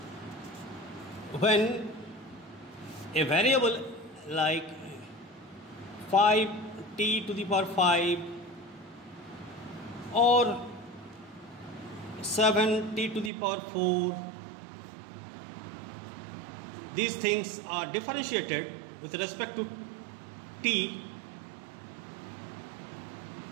when a variable like 5t to the power 5 or 7t to the power 4, these things are differentiated with respect to t,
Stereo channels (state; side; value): drops out; left; at 13.3 s